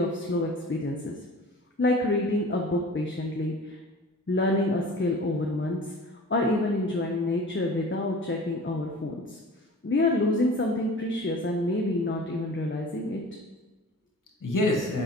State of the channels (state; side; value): normal; both; correlation 0.42